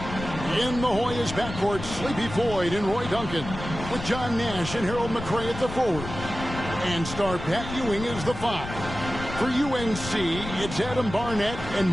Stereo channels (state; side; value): noise; left; rumble, 9 dB below the sound